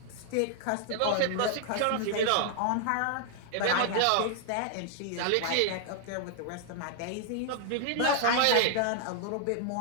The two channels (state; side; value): different; both; correlation 0.00